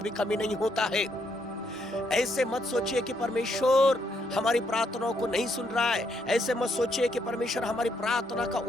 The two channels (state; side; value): normal; both; correlation 0.75